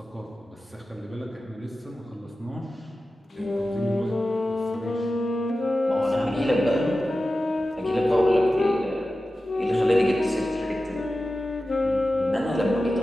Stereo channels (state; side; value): normal; both; correlation 0.94